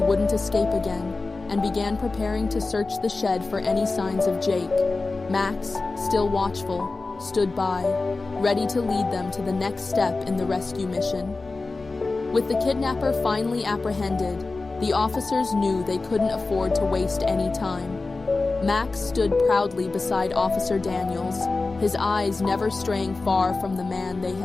escape again, and began preparing to search the shed for any signs of Jake. Max, still watchful, stood by, ready to lead them to the next step in the rescue mission. With the kidnapper finally apprehended, the officers knew they couldn't afford to waste any time. Max stood proudly beside Officer Daniels, his eyes never straying far from the man they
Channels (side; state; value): right; quieter; 3.6 dB